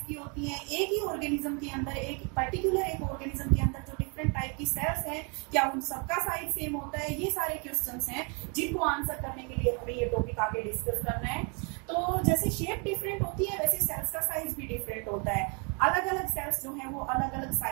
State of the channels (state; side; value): quieter; left; 33.9 dB